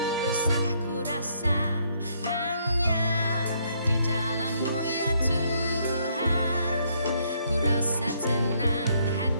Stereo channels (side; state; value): both; inverted; correlation -0.70